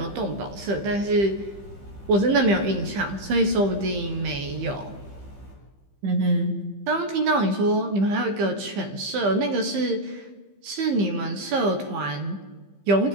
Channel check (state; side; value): late; left; 15 ms